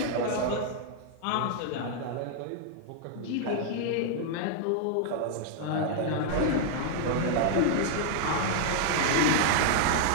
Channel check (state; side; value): different; both; correlation 0.00